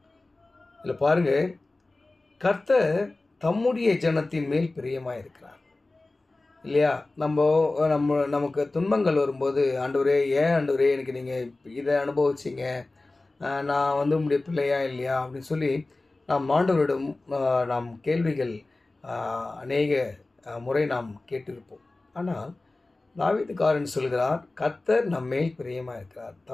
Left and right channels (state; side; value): quieter; right; 3.1 dB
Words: இதில் பாருங்க, கர்த்தர் தம்முடைய ஜனத்தின் மேல் பிரியமாக இருக்கிறார் இல்லையா? நமக்கு துன்பங்கள் வரும்போது, ஆண்டவரே ஏன் ஆண்டவரே எனக்கு நீங்கள் இதை அனுபவிச்சிங்க, நான் உங்களுடைய பிள்ளையா இல்லையா அப்படின்னு சொல்லி நாம் ஆண்டவரிடம் நாம் கேள்விகள் அநேக முறை நாம் கேட்டிருப்போம். ஆனால் தாவீதுக்காரன் சொல்கிறார், கர்த்தர் நம்மேல் பிரியமாக இருக்கிறார்,